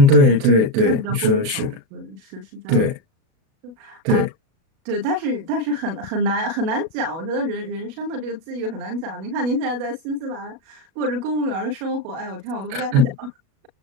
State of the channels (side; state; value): left; late; 37 ms